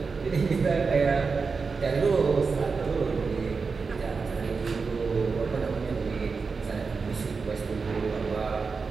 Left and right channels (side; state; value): left; quieter; 4.8 dB